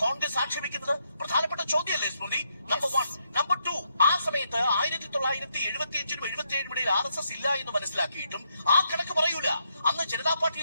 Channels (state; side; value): inverted; both; correlation -0.78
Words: കോൺഗ്രസ് ആക്ഷേപിക്കുന്നത്? പ്രധാനപ്പെട്ട ചോദ്യമല്ലേ സ്മൃതി? നമ്പർ 1. നമ്പർ 2, ആ സമയത്ത് 1975-നും 77-നും ഇടയിൽ RSS ഇല്ല എന്ന് മനസ്സിലാക്കിയിട്ടും ആ കണക്ക് പറയൂല. അന്ന് ജനതാ